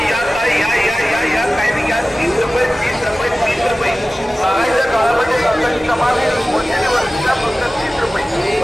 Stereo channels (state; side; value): normal; both; correlation 0.96